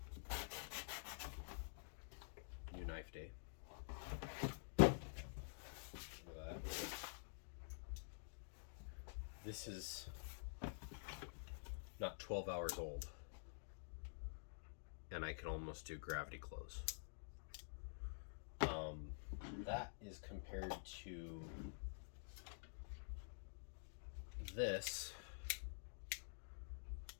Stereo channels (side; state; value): right; silent; digital silence